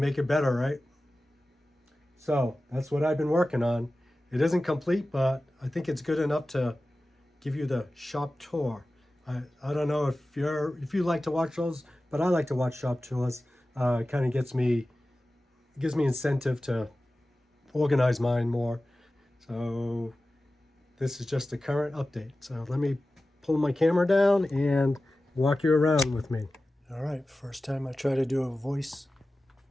it better, right? So that's what I've been working on. It isn't complete, but I think it's good enough to give you the shop tour. I don't know if you like to watch those, but I like to watch shop tours. It kind of gives me incentive to organize mine more. So this is just a current update. So let me pull my camera down and walk you around with me. All right, first time I try to do a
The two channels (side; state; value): both; normal; correlation 0.95